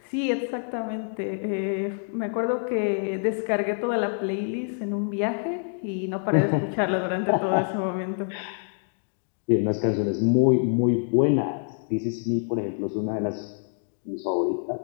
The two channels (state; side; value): silent; right; 61 dB below the other